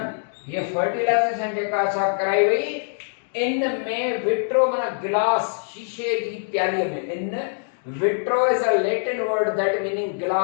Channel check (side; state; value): right; silent; digital silence